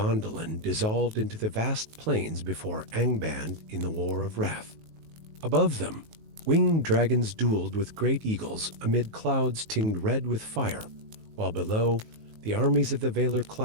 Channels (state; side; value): late; left; 19 ms